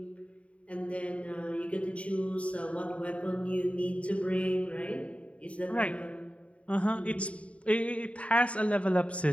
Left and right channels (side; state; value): right; late; 0.064 ms